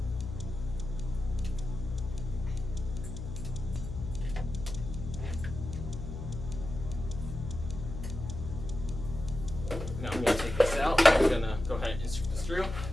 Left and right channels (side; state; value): left; noise; hum, 7 dB below the sound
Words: Now I'm going to take this out. I'm going to go ahead and insert this through.